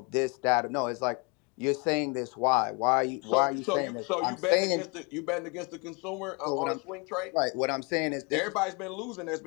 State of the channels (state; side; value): quieter; right; 31.6 dB